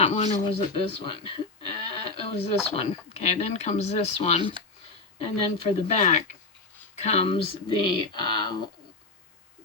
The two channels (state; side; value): quieter; right; 3.5 dB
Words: one, or was it this one? It was this one. Okay, then comes this one. And then for the back comes the